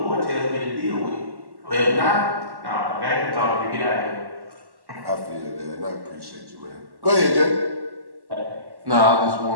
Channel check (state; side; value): late; left; 1.1 ms